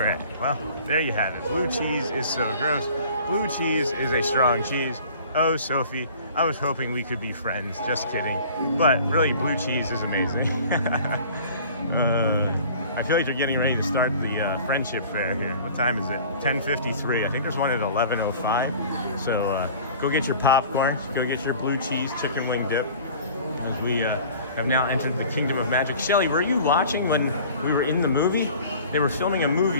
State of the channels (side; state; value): both; inverted; correlation -0.46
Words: Well, there you have it. Blue cheese is so gross. Blue cheese is a strong cheese. Oh, Sophie, I was hoping we could be friends. Just kidding. But really, blue cheese is amazing. I feel like they're getting ready to start the friendship fair here. What time is it? 10:53. I think there's one at 11:05. So go get your popcorn. Go get your blue cheese chicken wing dip. As we have now entered the Kingdom of Magic. Shelly, were you watching when we were in the movie? They were filming a